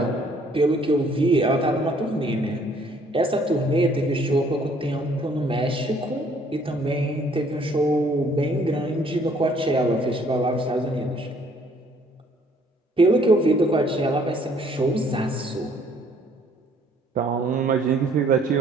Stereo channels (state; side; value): normal; both; correlation 0.61